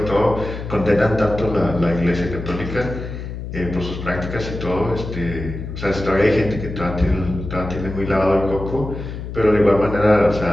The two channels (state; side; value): noise; left; hum, 8 dB below the sound